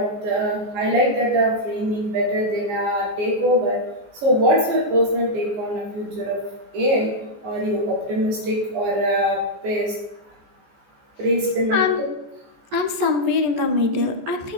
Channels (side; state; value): left; late; 14 ms